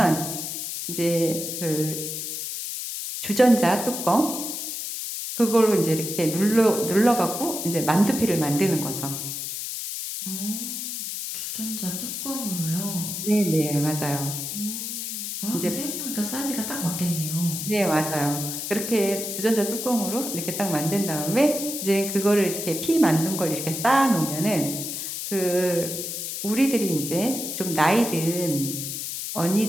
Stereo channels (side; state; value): left; noise; hiss, 5 dB below the sound